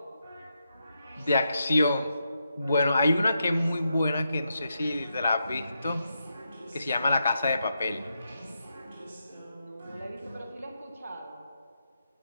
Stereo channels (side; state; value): both; inverted; correlation -0.84